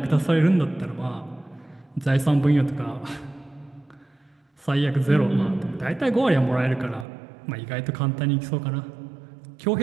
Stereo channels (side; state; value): left; drops out; at 7.1 s